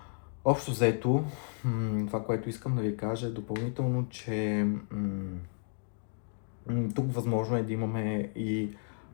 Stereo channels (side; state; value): right; silent; digital silence